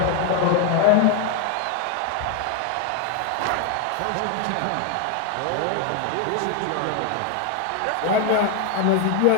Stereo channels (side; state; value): both; different; correlation 0.01